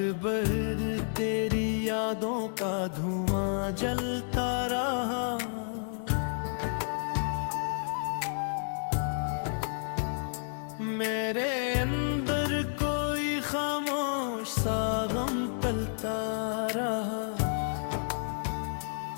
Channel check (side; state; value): right; silent; digital silence